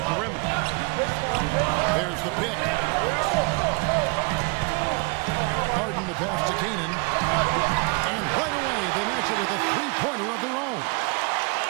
perimeter. There's the pick. Harden the pass to Canaan. And right away, they match it with a 3-pointer of their own.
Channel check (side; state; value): left; quieter; 30.5 dB